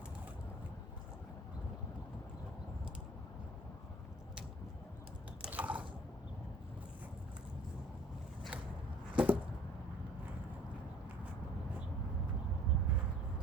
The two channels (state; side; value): normal; both; correlation 0.53